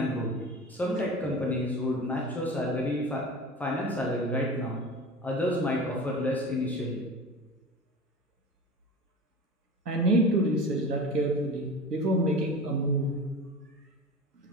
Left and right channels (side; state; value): both; normal; correlation 0.34